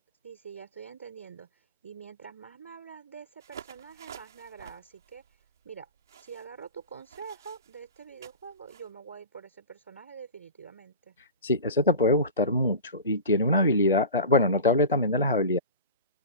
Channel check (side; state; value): both; inverted; correlation -0.31